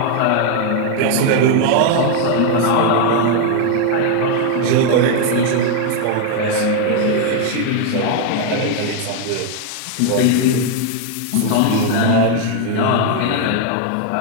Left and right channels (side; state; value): both; different; correlation 0.00